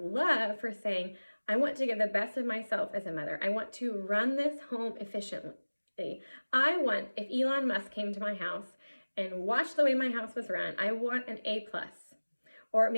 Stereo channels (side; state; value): both; inverted; correlation -1.00